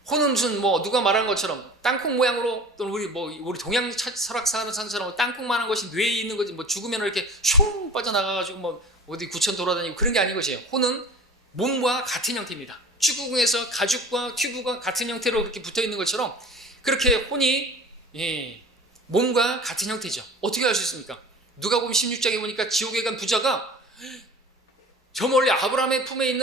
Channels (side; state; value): both; normal; correlation 0.40